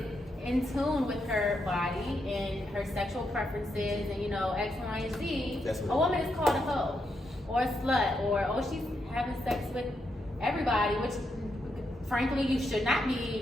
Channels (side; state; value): both; normal; correlation 0.81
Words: in tune with her body and her sexual preferences and X, Y, and Z, That's what a woman is called a hoe or a slut or she's having sex with everybody, which frankly you should not